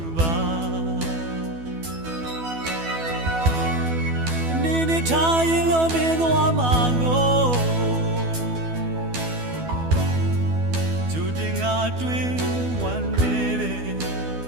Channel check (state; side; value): late; left; 12 ms